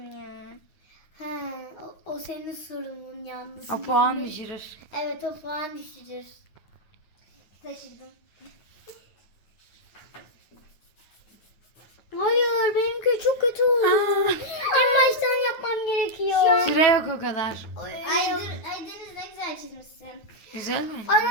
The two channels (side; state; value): right; late; 9.2 ms